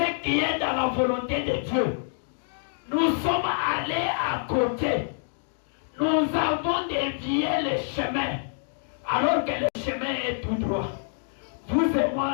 qui est dans la volonté de Dieu. Nous sommes allés à côté. Nous avons dévié le chemin, alors que le chemin est tout droit. Vous et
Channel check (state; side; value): silent; right; digital silence